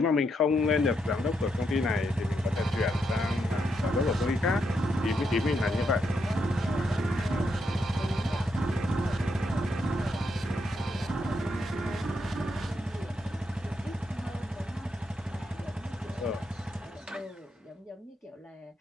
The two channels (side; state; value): both; normal; correlation 0.80